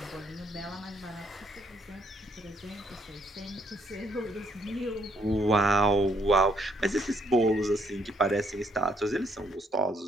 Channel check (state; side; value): normal; both; correlation 0.70